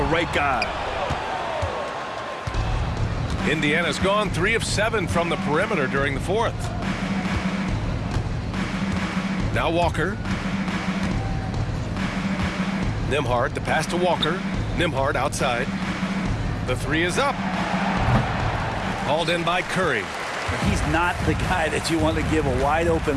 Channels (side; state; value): both; identical; correlation 1.00